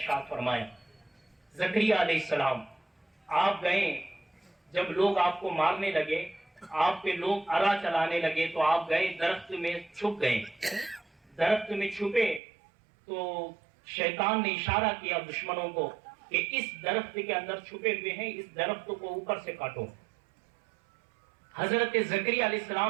فرمایا۔ زکریا علیہ السلام آپ گئے، جب لوگ آپ کو مارنے لگے، آپ پہ لوگ ارا چلانے لگے، تو آپ گئے درخت میں چھپ گئے۔ درخت میں چھپے تو شیطان نے اشارہ کیا دشمنوں کو کہ اس درخت کے اندر چھپے ہوئے ہیں، اس درخت کو اوپر سے کاٹو۔ حضرت زکریا علیہ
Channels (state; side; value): drops out; left; at 12.4 s